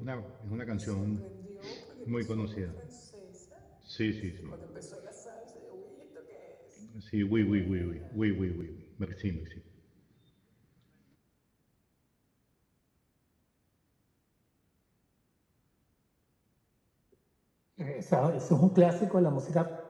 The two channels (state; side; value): identical; both; correlation 1.00